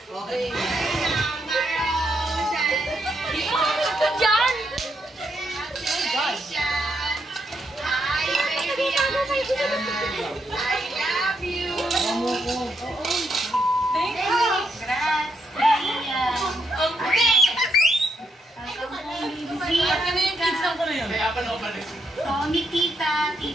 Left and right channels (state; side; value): normal; both; correlation 0.79